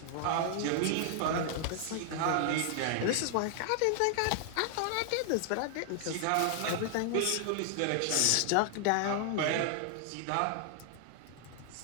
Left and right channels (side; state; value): both; different; correlation 0.00